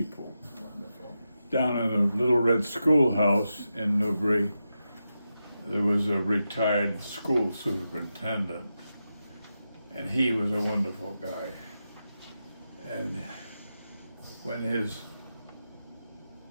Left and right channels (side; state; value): both; inverted; correlation -0.89